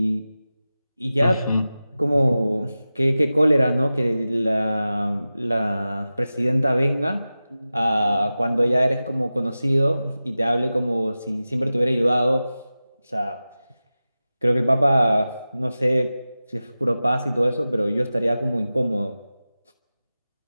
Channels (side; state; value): both; inverted; correlation -0.95